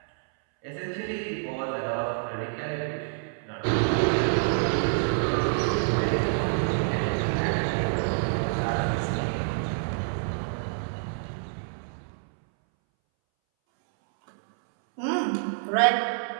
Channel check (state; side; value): silent; left; 60 dB below the other